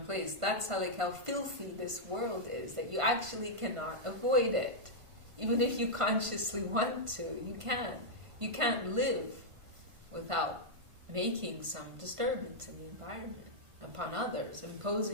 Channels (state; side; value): late; left; 1.5 ms